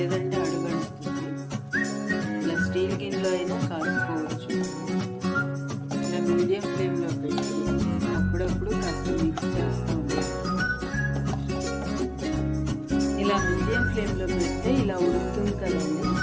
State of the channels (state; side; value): identical; both; correlation 1.00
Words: అడుగంటుతుంది. ఇలా స్టీల్ గిన్నెలో అయినా కాసుకోవచ్చు. ఇలా మీడియం ఫ్లేమ్లో పెట్టి అప్పుడప్పుడు కాస్త మిక్స్ చేస్తూ ఉండాలి. ఇలా మీడియం ఫ్లేమ్లో పెడితే ఇలా ఉడుకుతుంది కదండి,